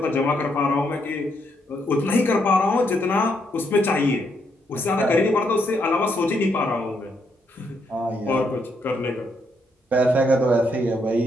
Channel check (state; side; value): normal; both; correlation 0.76